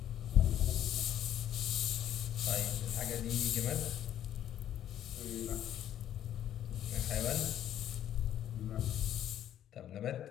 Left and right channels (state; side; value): quieter; right; 11.0 dB